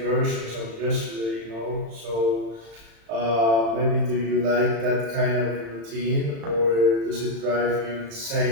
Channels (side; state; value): left; late; 35 ms